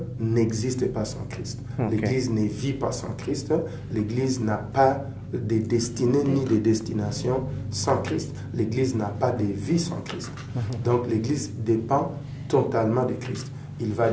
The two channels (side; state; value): both; identical; correlation 1.00